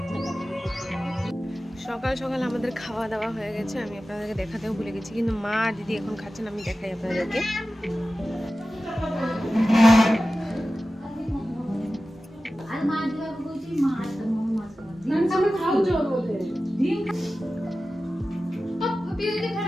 সকাল সকাল আমাদের খাওয়া দাওয়া হয়ে গেছে, আমি আপনাদেরকে দেখাতেও ভুলে গেছি, কিন্তু মা আর দিদি এখন খাচ্ছেন, আমি দেখাই আপনাদেরকে।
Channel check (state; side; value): normal; both; correlation 0.95